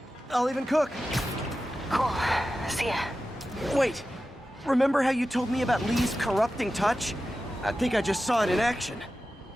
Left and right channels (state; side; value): normal; both; correlation 0.93